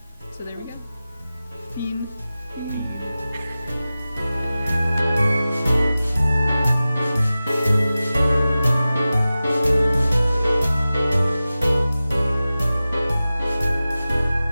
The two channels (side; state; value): both; inverted; correlation -0.96